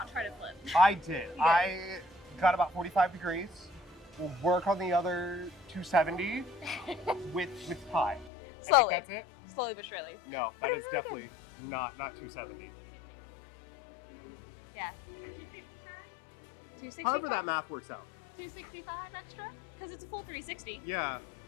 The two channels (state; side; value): drops out; right; at 8.3 s